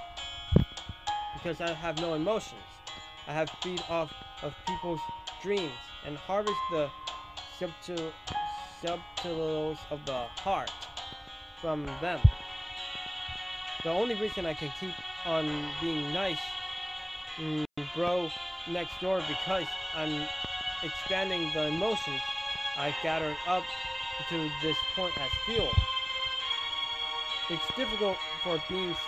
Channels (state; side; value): identical; both; correlation 1.00